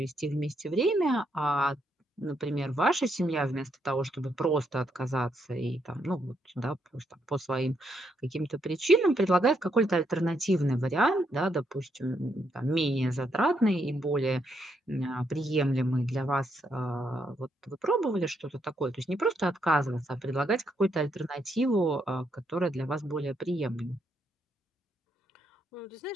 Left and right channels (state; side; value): normal; both; correlation 0.77